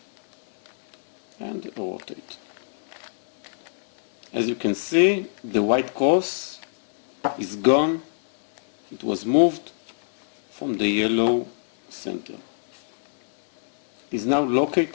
and rotate. As you can see, the white cross is gone. It was moved from the yellow center. It is now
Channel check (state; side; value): silent; right; digital silence